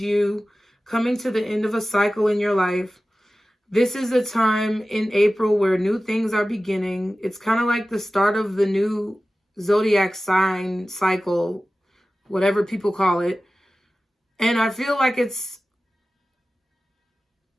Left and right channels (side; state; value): both; normal; correlation 0.95